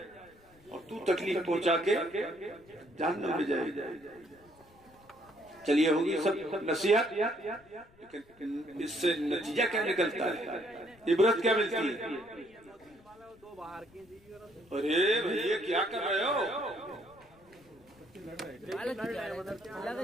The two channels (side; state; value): left; noise; rumble, 28 dB below the sound